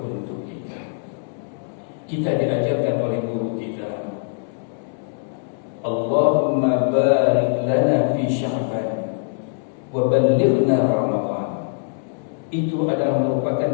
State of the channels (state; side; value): silent; right; digital silence